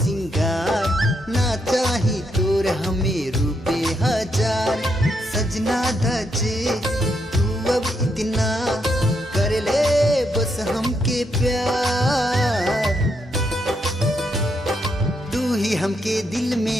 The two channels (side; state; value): both; normal; correlation 0.79